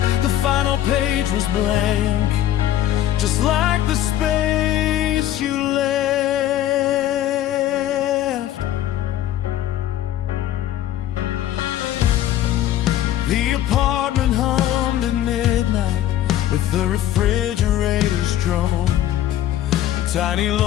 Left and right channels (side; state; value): right; quieter; 12.5 dB